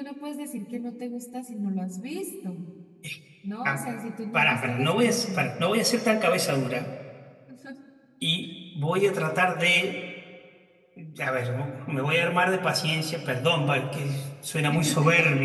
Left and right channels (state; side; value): identical; both; correlation 1.00